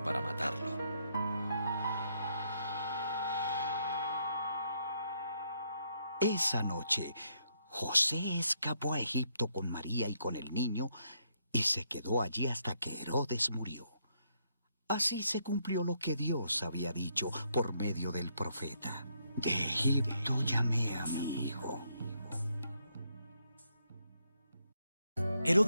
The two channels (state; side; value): inverted; both; correlation -0.75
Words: para matarlo. Esa noche, José escapó a Egipto con María y con el niño y se quedó allí hasta que Herodes murió. Así se cumplió lo que Dios había dicho por medio del profeta. De Egipto llamé a mi hijo.